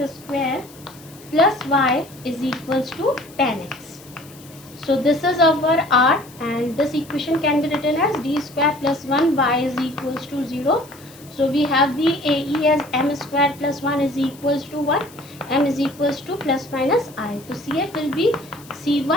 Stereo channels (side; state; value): left; noise; hiss, 22 dB below the sound